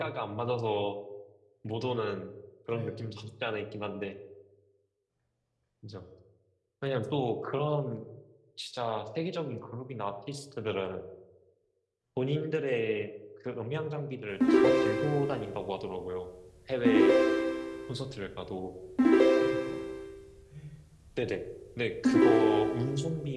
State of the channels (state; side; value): identical; both; correlation 1.00